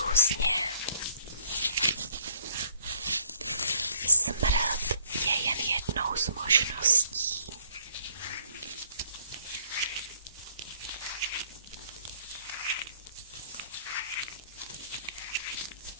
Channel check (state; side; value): inverted; both; correlation -0.62